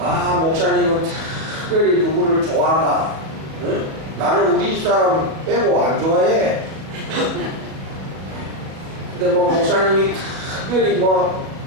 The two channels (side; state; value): left; late; 37 ms